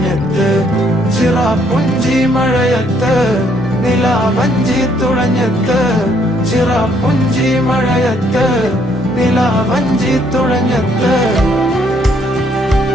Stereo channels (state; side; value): normal; both; correlation 0.68